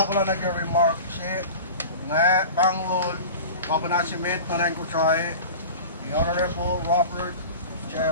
ako lang nag-remark siya nga Banglol Kapanasimet na rin ko try the Honorable Robert J.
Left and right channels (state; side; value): inverted; both; correlation -0.34